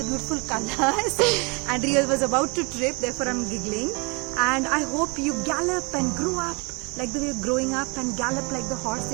beautiful colors. And Riya was about to trip, therefore I'm giggling. And I hope you gallop and grow up like the way you're growing up and gallop like the horse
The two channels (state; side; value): quieter; left; 30.0 dB